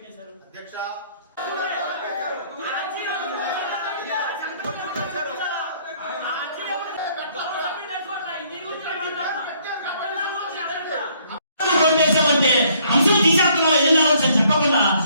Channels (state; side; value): inverted; both; correlation -0.64